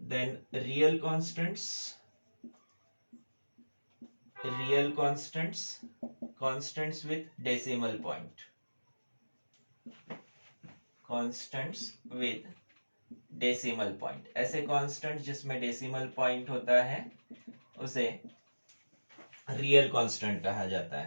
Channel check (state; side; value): inverted; both; correlation -1.00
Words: real constants with decimal point, constants with decimal point. ऐसे कांस्टेंट जिसमें डेसिमल पॉइंट होता है उसे रियल कांस्टेंट कहा जाता